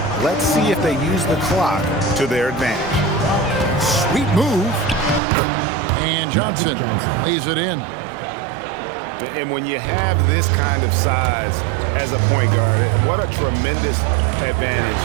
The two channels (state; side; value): drops out; left; at 5.2 s